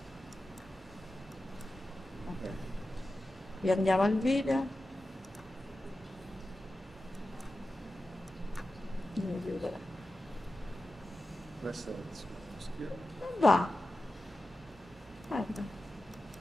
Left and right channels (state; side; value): normal; both; correlation 0.93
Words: Okay. Riandiamo al video. Questo è il suo schermo. Non va. Guarda.